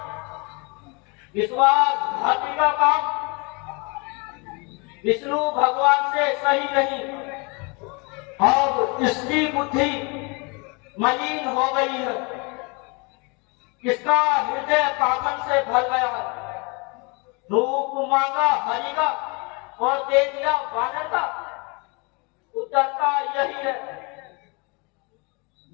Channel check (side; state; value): right; quieter; 30.6 dB